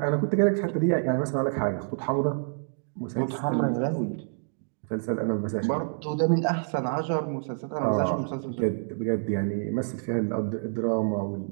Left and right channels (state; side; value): silent; left; digital silence